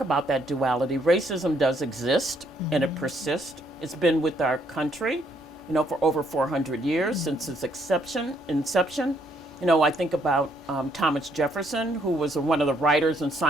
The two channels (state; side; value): normal; both; correlation 0.69